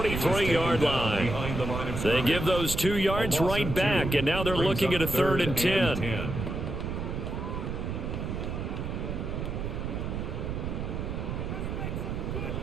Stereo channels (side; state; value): right; noise; rumble, 4 dB below the sound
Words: line. They give those 2 yards right back, and now they're looking at a 3rd and 10.